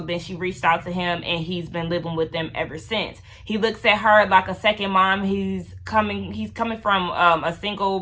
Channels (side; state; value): both; identical; correlation 1.00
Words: then she reached out to him, and he's been living with them ever since. He looks at her like a second mom. He's coming from a